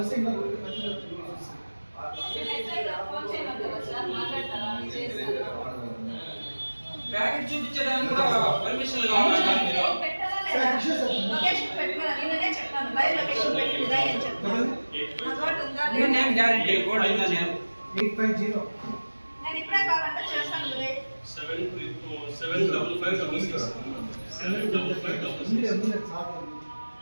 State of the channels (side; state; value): both; inverted; correlation -1.00